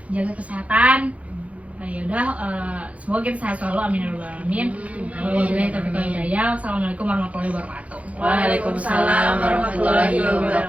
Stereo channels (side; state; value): left; late; 0.066 ms